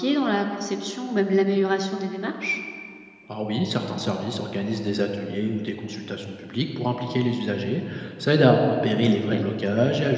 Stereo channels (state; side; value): identical; both; correlation 1.00